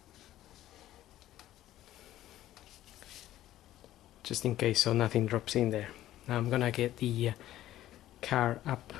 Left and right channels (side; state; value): right; quieter; 13.8 dB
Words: Just in case, so nothing drops in there. Now I'm gonna get the car up